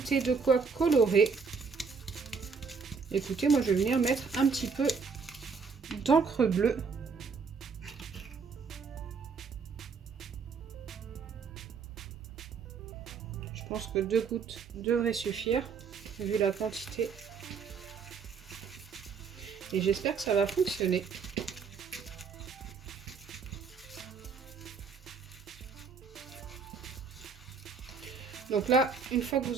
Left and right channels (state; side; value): quieter; left; 5.4 dB